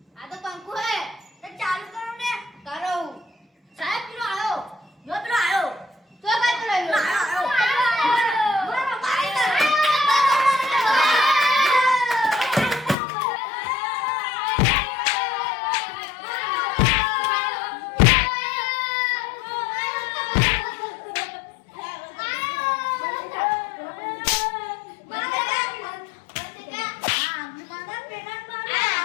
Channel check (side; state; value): right; drops out; at 13.0 s